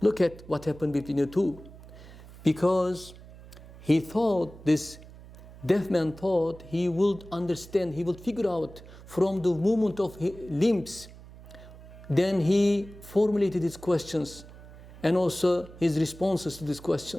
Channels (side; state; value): right; noise; hum, 18 dB below the sound